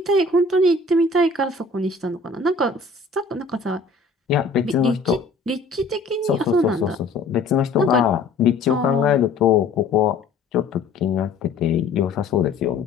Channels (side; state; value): right; quieter; 3.7 dB